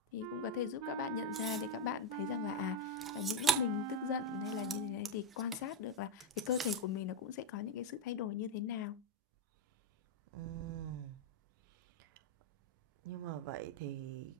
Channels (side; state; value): both; normal; correlation 0.06